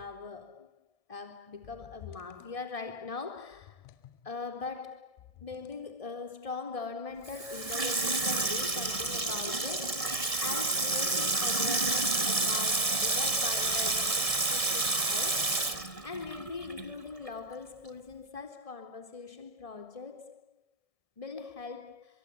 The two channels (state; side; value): late; right; 1.7 ms